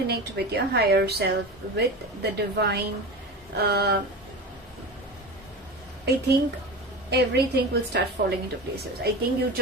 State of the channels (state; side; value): normal; both; correlation 0.28